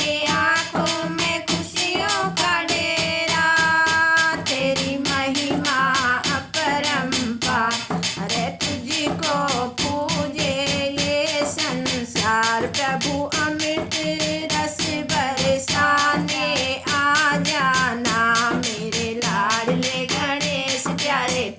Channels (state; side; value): identical; both; correlation 1.00